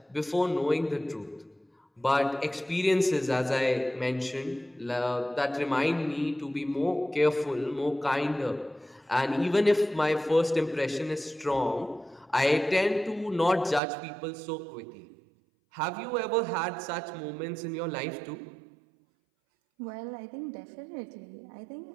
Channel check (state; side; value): drops out; left; at 13.8 s